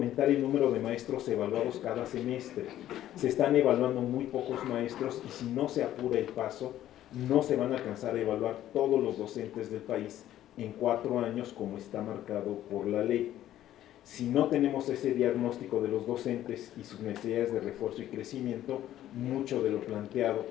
el número de maestros evaluados cada semestre. Se están evaluando muy pocos maestros y si no se apura el paso, no se van a alcanzar a evaluar todos los docentes del país en 4 años como está marcado por la ley. Si no tenemos ese diagnóstico de los docentes y sus necesidades de refuerzo y crecimiento, mucho de lo planteado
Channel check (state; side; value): quieter; right; 12.7 dB